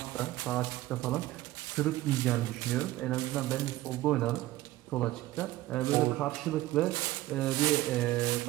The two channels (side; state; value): left; quieter; 16.6 dB